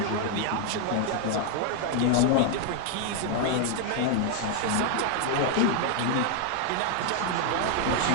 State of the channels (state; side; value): different; both; correlation 0.00